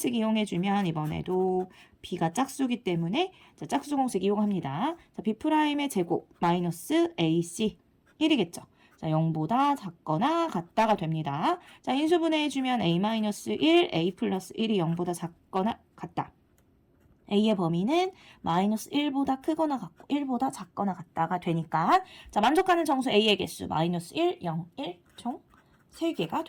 이용해주면 이번에도 b가 짝수기 때문에 자, 짝수 공식 이용합니다. 자, b'의 제곱 마이너스 ac 1이겠죠. 자, 0보다 작거나 같다가 됩니다. 자, 인수분해해주면 a-1, a 플러스 1이 0보다 작거나 같다. a의 범위는 마이너스 1보다 크거나 같고 1보다 작거나 같다가 되니까 자, 만족하는 정수 a의 개수 마이너스 1, 0, 1 총 3개가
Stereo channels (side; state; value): both; identical; correlation 1.00